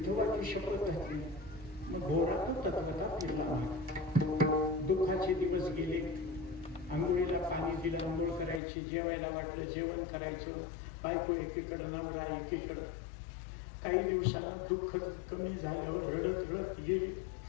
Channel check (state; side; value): drops out; right; at 8.6 s